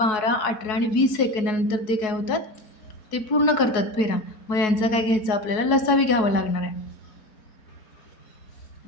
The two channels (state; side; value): late; right; 4.7 ms